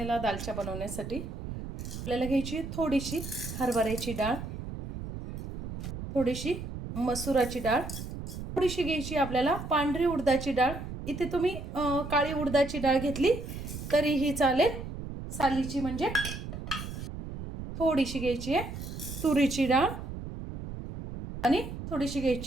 दालचा बनवण्यासाठी आपल्याला घ्यायची थोडीशी हरभऱ्याची डाळ, थोडीशी मसुराची डाळ, थोडीशी घ्यायची आपल्याला पांढरी उडदाची डाळ। इथे तुम्ही काळी उडदाची डाळ घेतली तरीही चालेल, सालीची म्हणजे। थोडीशी घ्यायची आहे तुरीची डाळ आणि थोडीशी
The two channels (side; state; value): right; noise; rumble, 8 dB below the sound